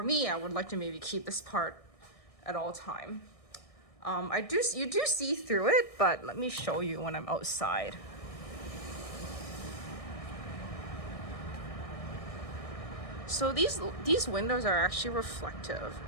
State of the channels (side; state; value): right; late; 1.6 ms